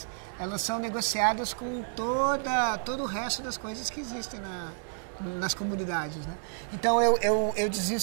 elas são negociadas com todo o resto das coisas que existem nas comunidades, né? Então, eu dizia o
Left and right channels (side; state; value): left; silent; digital silence